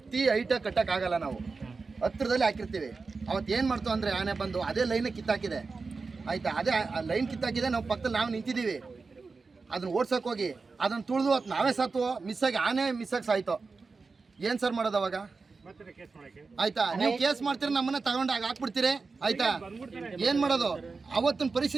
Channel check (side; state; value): left; quieter; 4.3 dB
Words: ಕಟ್ಟೋಕ್ಕಾಗಲ್ಲ, ನಾವು ಹತ್ತಿರದಲ್ಲಿ ಹಾಕಿರ್ತೀವಿ. ಅವತ್ತು ಏನು ಮಾಡ್ತು ಅಂದರೆ ಆನೆ ಬಂದು ಅದೇ ಲೈನೇ ಕಿತ್ತಾಕಿದೆ ಆಯಿತಾ. ಅದೇ ಲೈನ್ ಕಿತ್ತಾಕಿದೆ, ನಾವು ಪಕ್ಕದಲ್ಲಿ ನಾವು ನಿಂತಿದ್ದೀವಿ. ಅದನ್ನ ಓಡ್ಸೋಕೆ ಹೋಗಿ ಅದನ್ನು ತುಳಿದು ಅದು ನಾವೇ ಸತ್ತು ಮಿಸ್ಸಾಗಿ ಆನೆ ಮಿಸ್ಸಾಗಿ ಸಾಯ್ತು. ಏನು ಸರ್ ಮಾಡೋದು ಅವಾಗ ಆಯ್ತಾ? ನೀವು ಕೇಸ್ ಮಾಡ್ತೀರಿ, ನಮ್ಮನ್ನ ತಗೊಂಡು ಹಾಕ್ಬಿಡ್ತೀರಿ ಆಯ್ತಾ. ಏನು ಮಾಡೋದು? ಅವತ್ತಿನ